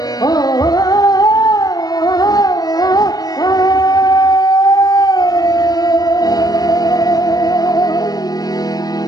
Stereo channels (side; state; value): right; late; 0.19 ms